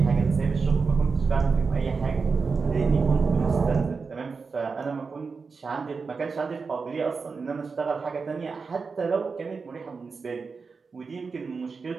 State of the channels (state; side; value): quieter; left; 4.8 dB